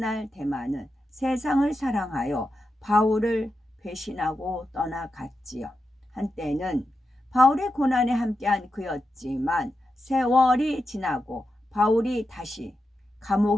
데마는 세상을 사랑하여 바울을 배신하고 떠나갔지요. 한때는 바울의 고난에 함께한 그였지만 세월이 지나고 바울이 다시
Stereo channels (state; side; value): normal; both; correlation 0.88